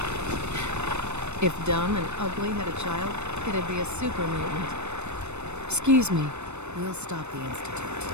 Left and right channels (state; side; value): late; left; 0.82 ms